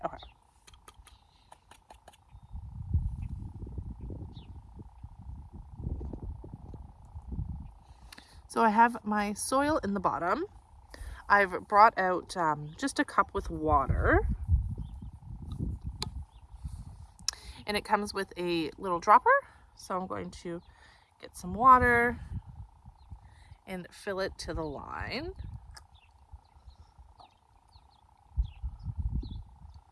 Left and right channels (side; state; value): both; identical; correlation 1.00